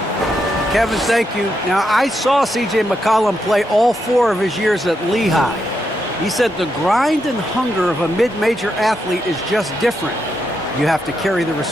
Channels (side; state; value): both; normal; correlation 0.82